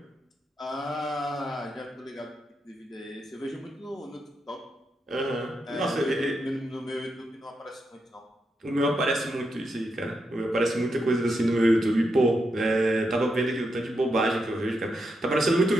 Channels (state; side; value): normal; both; correlation 0.84